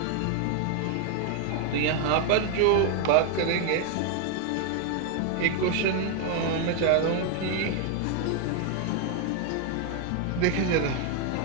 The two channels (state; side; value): different; both; correlation 0.00